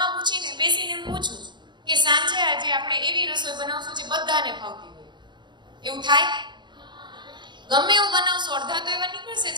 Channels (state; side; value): late; left; 0.22 ms